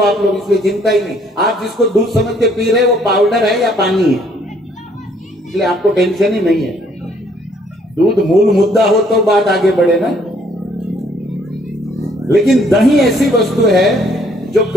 आप लोग, इसलिए चिंता ही नहीं। आप जिसको दूध समझ के पी रहे हो वो पाउडर है या पानी है, इसलिए आपको टेंशन ही नहीं है। दूध मूल मुद्दा हो तो बात आगे बढ़े ना। लेकिन दही ऐसी वस्तु है जो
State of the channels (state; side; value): normal; both; correlation 0.64